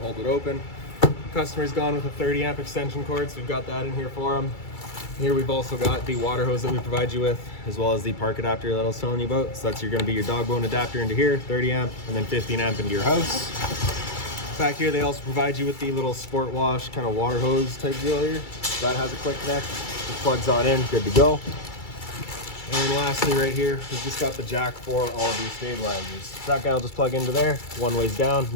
it open. Customer's gone with a 30 amp extension cord, so we've got that in here for them. Here we've also got the water hose that we provide you with, as well as the park adapter that I was telling you about. So that's going to be your dog bone adapter into here, 30 amp, and then 15 amp into your house. Back here they also provide you with the little sport wash kind of water hose type deal here. That has a quick connect, just plugs on in, good to go. And then lastly right here, we've just got the jack for all of your stabilizers. So that guy will just plug into there, one way's down and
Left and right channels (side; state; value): right; late; 2.3 ms